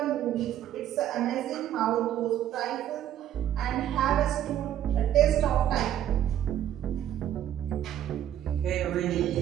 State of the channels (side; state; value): left; quieter; 11.3 dB